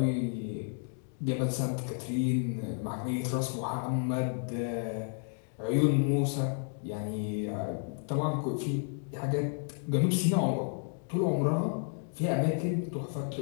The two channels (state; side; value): silent; right; 57 dB below the other